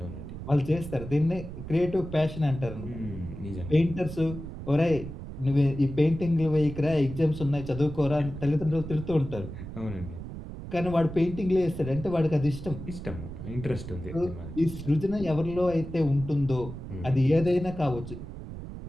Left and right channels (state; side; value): noise; right; rumble, 10 dB below the sound